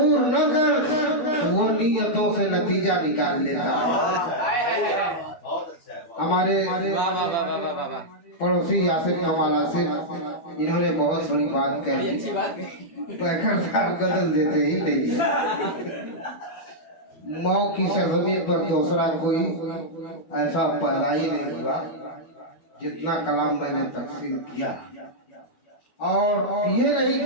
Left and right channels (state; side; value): late; right; 12 ms